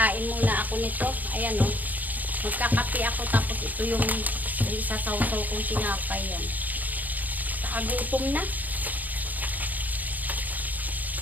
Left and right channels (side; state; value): left; late; 0.081 ms